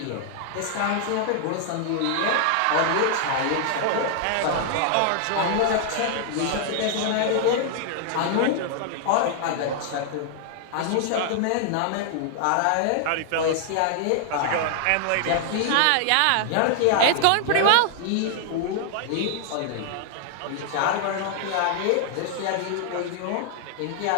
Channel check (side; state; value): both; different; correlation 0.00